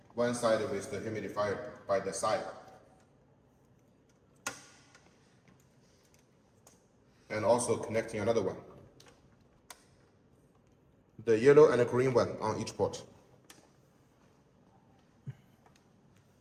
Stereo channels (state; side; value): identical; both; correlation 1.00